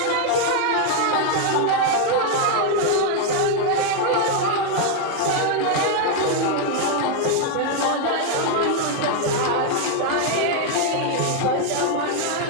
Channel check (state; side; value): different; both; correlation 0.01